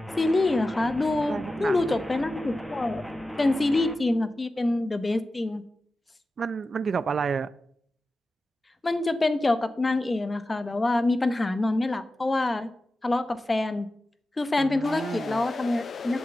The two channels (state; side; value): normal; both; correlation 0.93